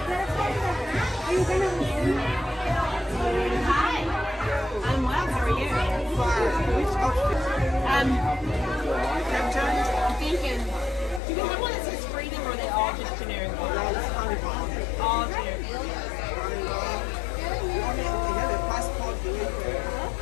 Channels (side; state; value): right; drops out; at 11.2 s